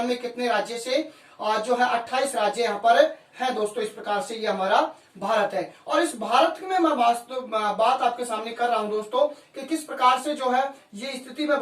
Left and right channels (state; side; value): identical; both; correlation 1.00